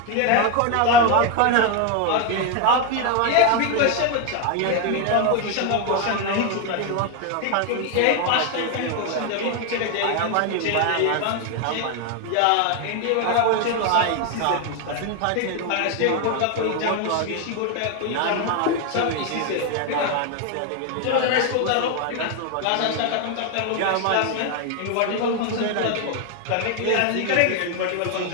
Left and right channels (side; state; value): both; different; correlation 0.01